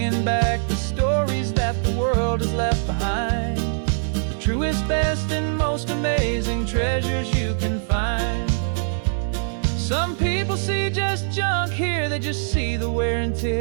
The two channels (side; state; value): left; silent; digital silence